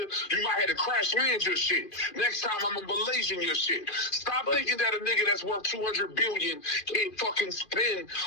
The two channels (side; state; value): right; late; 2.4 ms